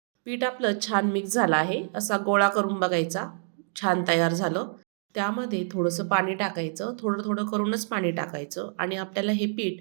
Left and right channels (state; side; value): silent; left; digital silence